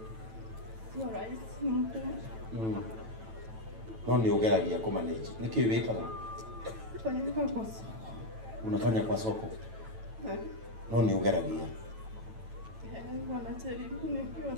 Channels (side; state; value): left; late; 9.1 ms